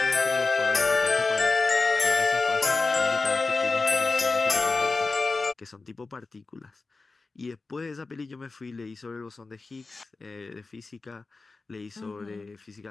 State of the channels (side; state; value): right; quieter; 3.8 dB